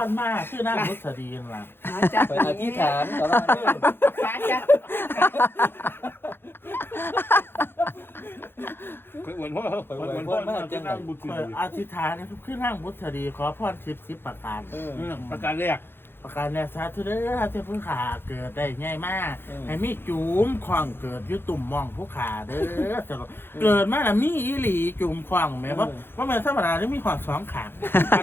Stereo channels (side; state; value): right; late; 0.10 ms